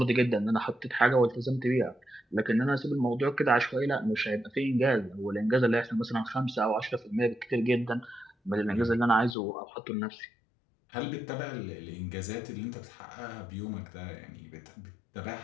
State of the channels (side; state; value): right; drops out; at 9.3 s